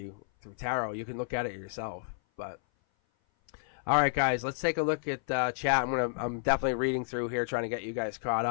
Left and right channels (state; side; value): silent; right; 56 dB below the other